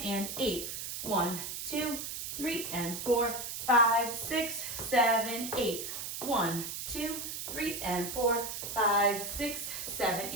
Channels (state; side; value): noise; right; hiss, 6 dB below the sound